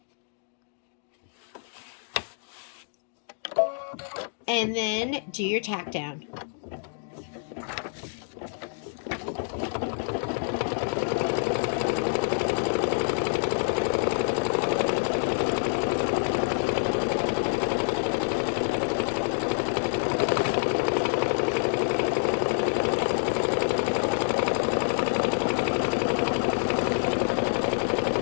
And then do your tack down.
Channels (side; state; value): right; silent; digital silence